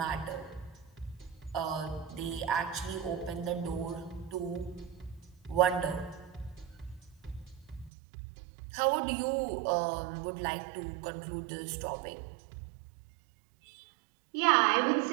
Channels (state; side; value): drops out; left; at 7.9 s